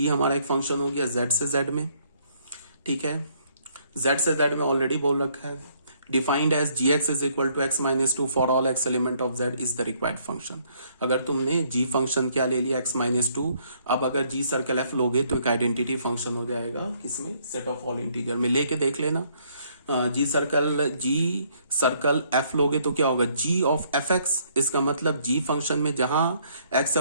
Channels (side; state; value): both; inverted; correlation -0.67